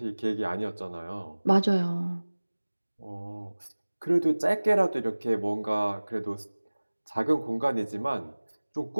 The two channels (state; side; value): inverted; both; correlation -1.00